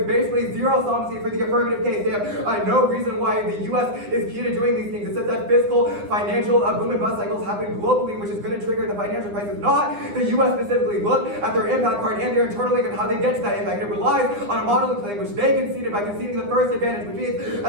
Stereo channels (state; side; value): late; left; 9.8 ms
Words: basically zero solvency for the affirmative case. They have no reason why the U.S. is key to doing these things. It says that fiscal, financial boom and bust cycles happen globally, which is going to trigger the financial crisis, not the U.S. specifically. Look at their impact card and their internal link and how they get to that impact. It relies on a modeling claim, which they conceded by conceding the first advantage, which means